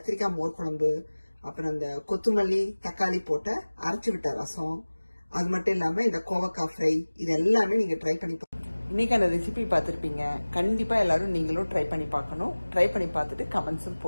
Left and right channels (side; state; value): both; inverted; correlation -1.00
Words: மோர் குழம்பு, அப்புறம் இந்த கொத்தமல்லி தக்காளி போட்ட அரைச்சு விட்ட ரசம், அது மட்டும் இல்லாம இந்த கோவக்காய் ஃப்ரை, இது எல்லாமே நீங்க ட்ரை பண்ணி இன்னைக்கான ரெசிபி பார்த்துருப்பீங்க. கண்டிப்பா எல்லாரும் நீங்களும் ட்ரை பண்ணி பார்க்கணும். ட்ரை பண்ணி பார்த்துட்டு கமெண்ட்ஸும்